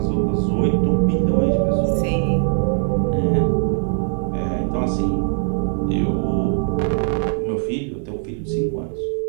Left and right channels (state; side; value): silent; left; digital silence